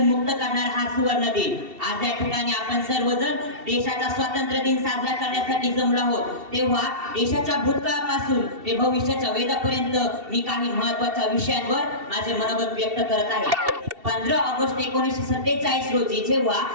मुक्त करणार हा सुवर्ण दिन। आज या ठिकाणी आपण सर्वजण देशाचा स्वातंत्र्य दिन साजरा करण्यासाठी जमलो आहोत। तेव्हा देशाच्या भूतकाळापासून ते भविष्याच्या वेदापर्यंत मी काही महत्त्वाच्या विषयांवर माझे मनोगत व्यक्त करत आहे। 15 ऑगस्ट 1947 रोजी जेव्हा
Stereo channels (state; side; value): late; left; 2.7 ms